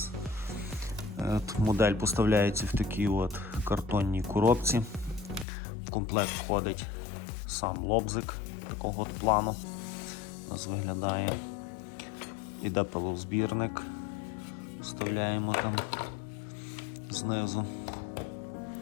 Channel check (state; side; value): drops out; right; at 5.5 s